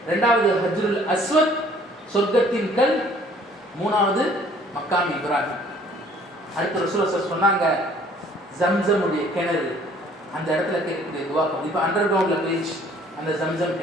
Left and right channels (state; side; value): normal; both; correlation 0.57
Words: 2வது ஹஜ்ருல் அஸ்வத், சொர்க்கத்தின் கல். 3வது மக்காமி இப்ராஹிம். அடுத்து ரசூலுல்லாஹ் சொன்னாங்க ஜம்சமுடைய கிணறு, அந்த இடத்துல கேட்கக்கூடிய துவா கபூல். இப்போ அண்டர் கிரவுண்டில் போயிடுச்சு அந்த ஜம்சம்